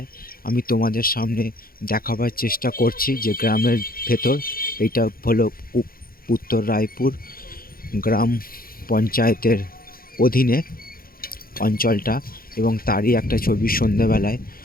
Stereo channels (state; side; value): late; right; 0.42 ms